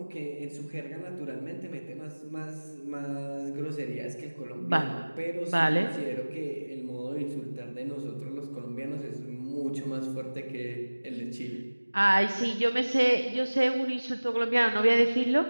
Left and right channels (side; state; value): both; inverted; correlation -1.00